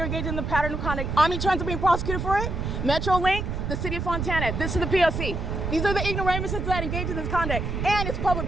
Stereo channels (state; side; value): noise; right; rumble, 3 dB below the sound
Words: engaging in the pattern of conduct. Omnitrans are being prosecuted for it. Metrolink, the city of Fontana. This is the P.O.C. These are the ignoramuses that engage in this conduct, and it's public